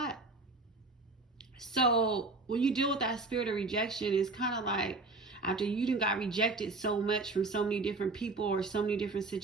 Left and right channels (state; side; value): quieter; left; 3.5 dB